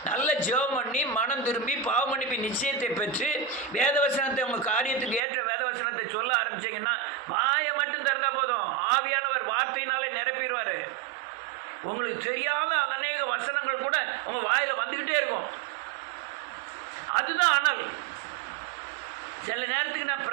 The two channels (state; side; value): drops out; left; at 5.2 s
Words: நல்ல ஜெபம் பண்ணி மனம் திரும்பி பாவமன்னிப்பு நிச்சயத்தை பெற்று வேதவசனத்தை உங்கள் காரியத்துக்கு ஏற்ற வேதவசனத்தை சொல்ல ஆரம்பிச்சிங்கன்னா வாயை மட்டும் திறந்தா போதும், ஆவியானவர் வார்த்தையினாலே நிரப்பிடுவார். உங்களுக்கு தெரியாத அநேக வசனங்கள் கூட உங்கள் வாயில் வந்துக்கிட்டே இருக்கும். அதுதான் அனல். சில நேரத்துக்கு நான்